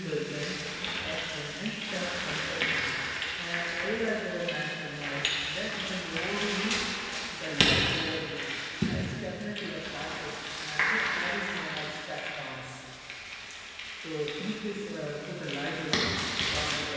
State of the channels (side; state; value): both; identical; correlation 1.00